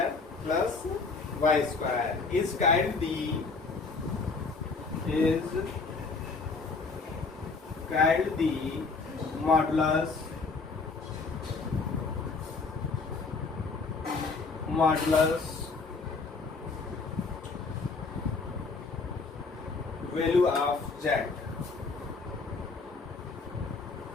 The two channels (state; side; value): quieter; right; 4.3 dB